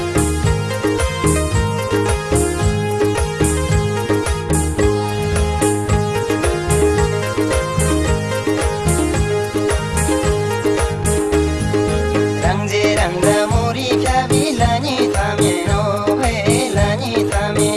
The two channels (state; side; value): identical; both; correlation 1.00